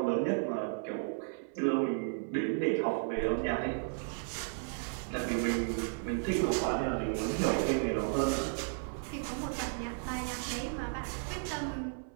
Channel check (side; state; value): left; silent; 55 dB below the other